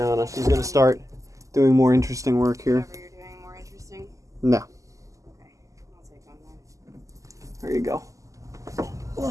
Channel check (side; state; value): left; late; 0.16 ms